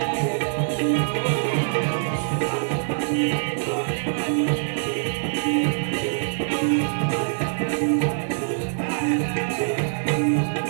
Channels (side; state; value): left; silent; digital silence